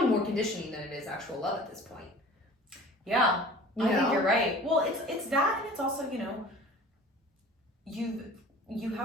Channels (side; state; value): both; normal; correlation 0.44